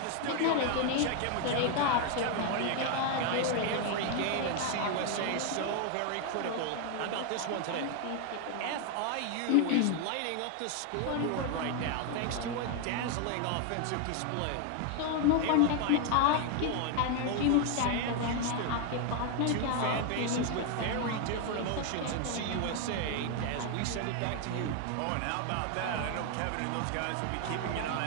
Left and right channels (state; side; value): different; both; correlation 0.01